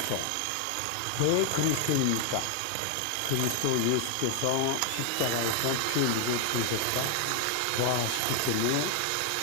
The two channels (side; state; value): both; different; correlation 0.00